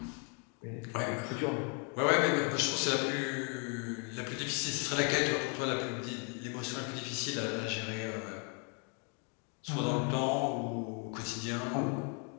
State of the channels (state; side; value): quieter; right; 38.1 dB